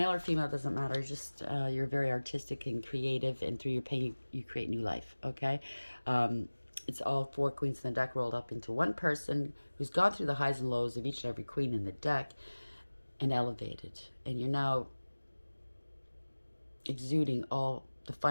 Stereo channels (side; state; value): both; inverted; correlation -1.00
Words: or female, doesn't matter. Just you're very artistic and creative, and through your pain, you create new life. Okay? It's all 4 queens in the deck rolled up into one person who's gone through the highs and lows of each and every queen in the deck and elevated. And you're now exuding all the